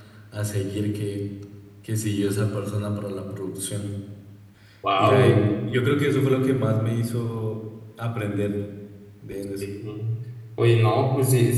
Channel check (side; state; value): both; identical; correlation 1.00